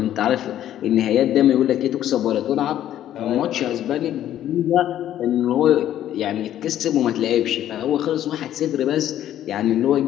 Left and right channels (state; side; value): quieter; right; 11.8 dB